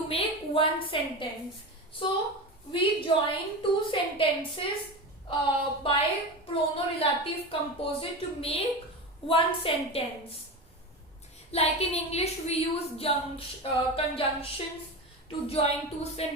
make one sentence. So we join two sentences by prono-relative composite to make one sentence. Like in English, we use conjunctions to join two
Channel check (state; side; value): normal; both; correlation 0.24